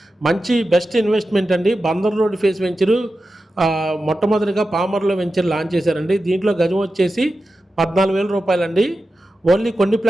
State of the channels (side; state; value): both; normal; correlation 0.92